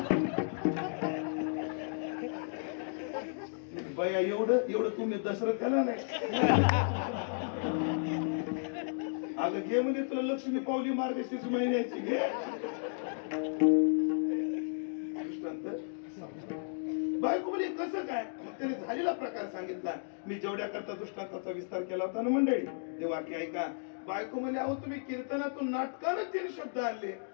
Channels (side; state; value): right; silent; digital silence